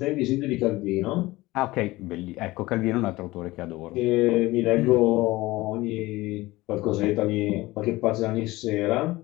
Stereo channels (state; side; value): quieter; right; 19.4 dB